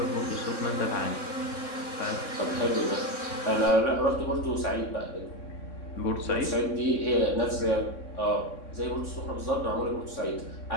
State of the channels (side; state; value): right; late; 3.6 ms